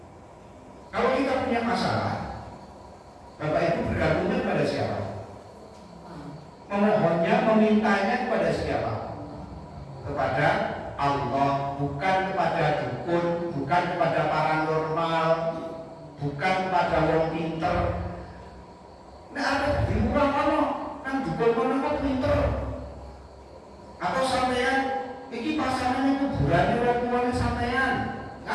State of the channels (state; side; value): identical; both; correlation 1.00